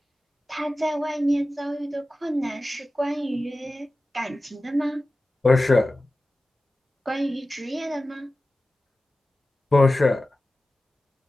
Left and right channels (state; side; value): normal; both; correlation 0.95